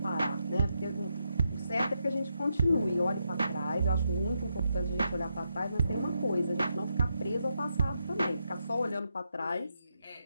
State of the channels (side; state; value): both; inverted; correlation -0.82